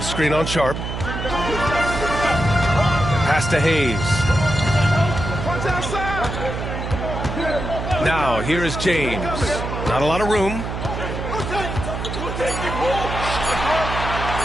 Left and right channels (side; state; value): right; noise; hum, 5 dB below the sound